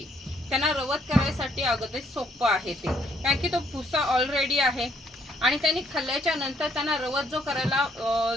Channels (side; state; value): both; normal; correlation 0.68